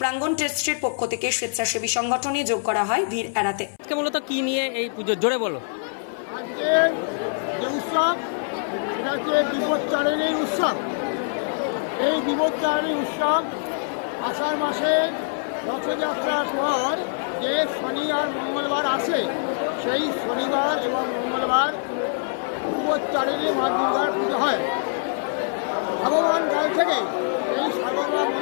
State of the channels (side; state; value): right; silent; 62 dB below the other